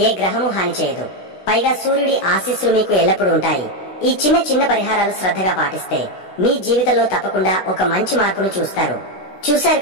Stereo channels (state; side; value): late; right; 16 ms